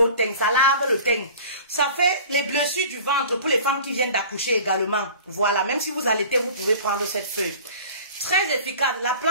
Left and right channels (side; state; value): both; inverted; correlation -0.42